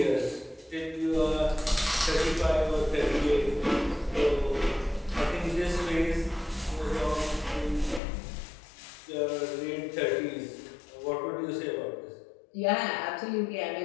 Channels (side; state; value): right; drops out; at 8.0 s